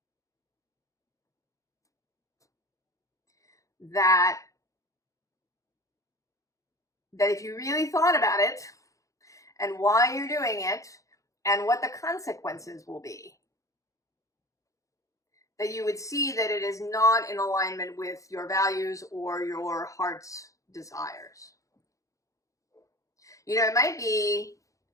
That that if you really thought about it and why you're doing it and what the consequences will be, that you would see that it is not in alignment with your values or your heart's desires. You know, it might be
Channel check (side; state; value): right; late; 0.16 ms